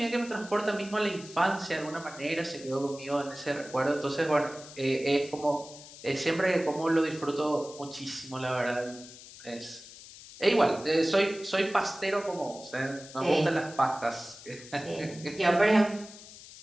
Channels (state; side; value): noise; left; hiss, 17 dB below the sound